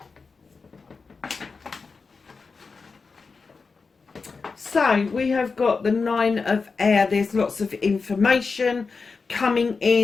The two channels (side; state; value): right; quieter; 4.6 dB